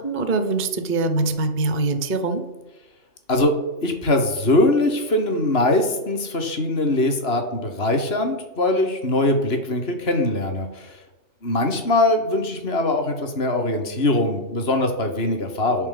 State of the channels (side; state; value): right; late; 2.9 ms